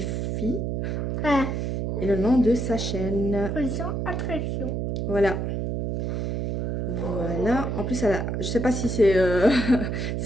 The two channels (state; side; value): noise; right; hum, 1 dB below the sound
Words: Ah, Et le nom de sa chaîne. position attraction. Voilà. Voilà. En plus, je sais pas si c'est